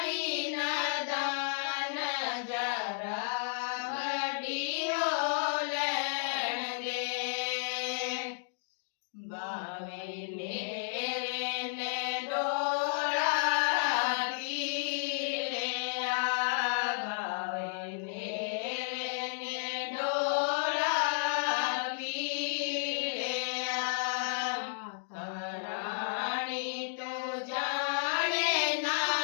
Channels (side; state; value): right; silent; digital silence